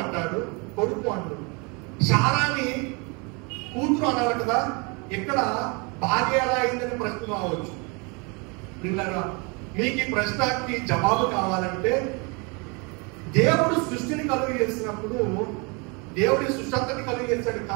అంటాడు, కొడుకు అంటాడు. శారాని కూతురు అన్నారు కదా, ఇక్కడ భార్య ఎలా అయిందని ప్రశ్న రావచ్చు. మీకు ఈ ప్రశ్నకి జవాబు కావాలంటే, దేవుడు సృష్టిని కలుగు చేసినప్పుడు దేవుడి సృష్టి అంతని కలుగు చేశాడు,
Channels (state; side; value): quieter; left; 30.9 dB